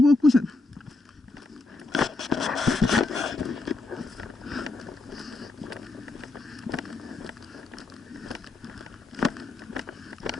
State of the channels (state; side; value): quieter; right; 3.4 dB